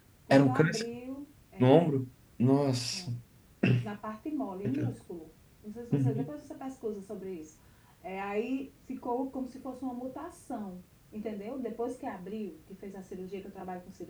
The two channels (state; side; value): identical; both; correlation 1.00